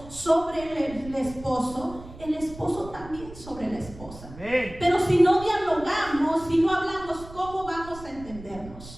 sobre el esposo también sobre la esposa. Amén. Pero si no dialogamos, si no hablamos, ¿cómo vamos a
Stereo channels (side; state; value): right; noise; rumble, 16 dB below the sound